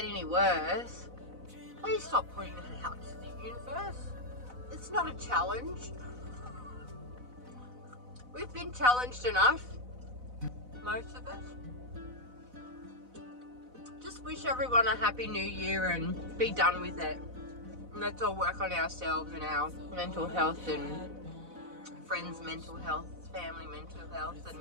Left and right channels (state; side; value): late; left; 4.0 ms